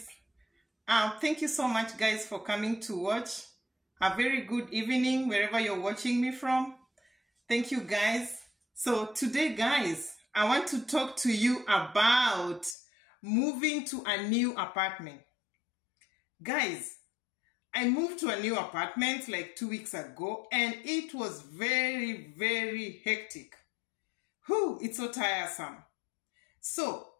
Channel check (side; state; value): right; drops out; at 12.8 s